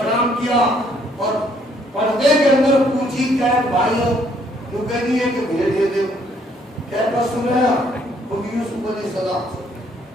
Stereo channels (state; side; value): normal; both; correlation 0.66